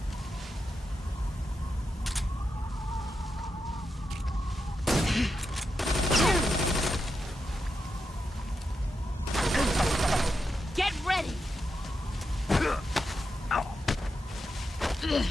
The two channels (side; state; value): both; normal; correlation 0.86